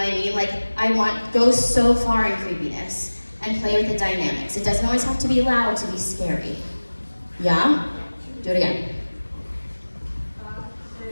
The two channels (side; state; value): both; inverted; correlation -1.00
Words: I mean? Like go so far in creepiness and play with the dynamics. It doesn't always have to be loud to be scary. Yeah? Do it again. 5, 6,